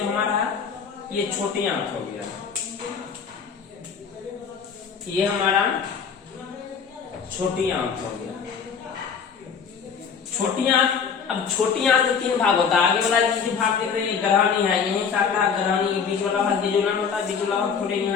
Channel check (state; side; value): quieter; right; 6.4 dB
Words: हमारा है ये छोटी आंत हो गया, ये हमारा छोटी आंत हो गया। छोटी आंत, अब छोटी आंत में 3 भाग होता है। आगे वाला जो भाग देख रहे हैं ग्रहणी है, यही शाखा ग्रहणी, बीच वाला भाग जेजुनम होता है, बीच वाला भाग थोड़े